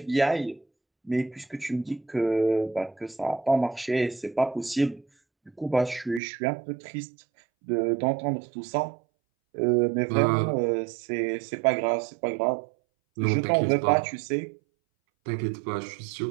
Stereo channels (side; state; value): left; drops out; at 6.2 s